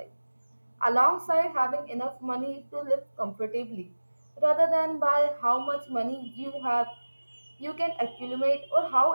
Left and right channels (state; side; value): inverted; both; correlation -1.00